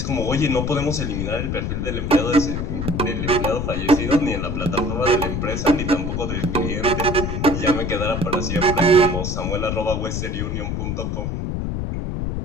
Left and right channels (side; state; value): left; noise; rumble, 2 dB below the sound